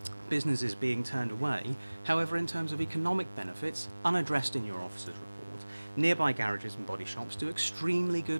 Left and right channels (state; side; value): inverted; both; correlation -1.00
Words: Business is being turned away. However, in terms of economic benefits, unaddressed in your officer's report, nearby garages and body shops do extremely